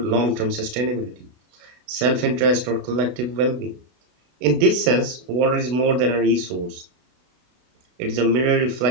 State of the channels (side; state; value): left; late; 32 ms